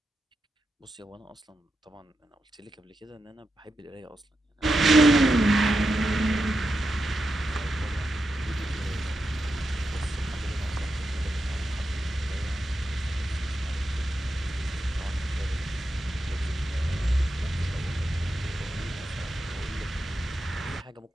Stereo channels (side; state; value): both; normal; correlation 0.87